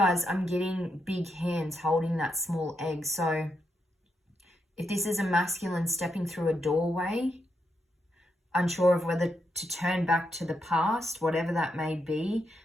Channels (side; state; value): both; normal; correlation 0.82